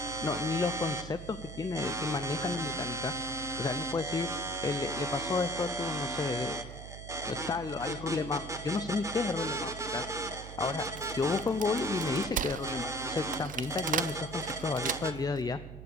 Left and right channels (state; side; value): noise; right; hum, 12 dB below the sound